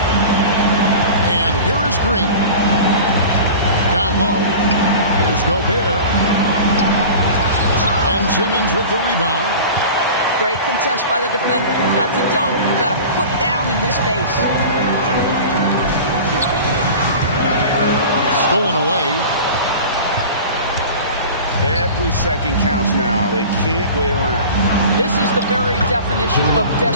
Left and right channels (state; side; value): inverted; both; correlation -0.37